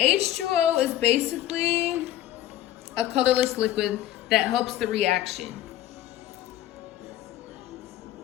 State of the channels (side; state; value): right; quieter; 13.2 dB